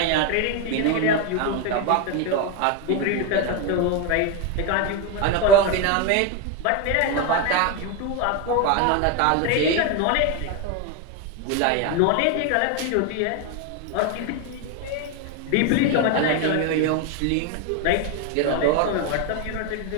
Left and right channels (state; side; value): different; both; correlation 0.02